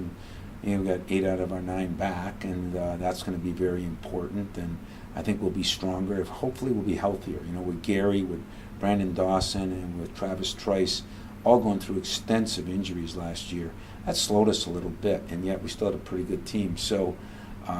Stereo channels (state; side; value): identical; both; correlation 1.00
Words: We've got 8 out of our 9 back, and that's going to be very important. And I think we'll be stronger. Hopefully, we'll be healthier. With Gary, with Brandon Dawson, and with Travis Trice, all going through extensive injuries last year. That slowed us a little bit, and yet we still had a pretty good team. So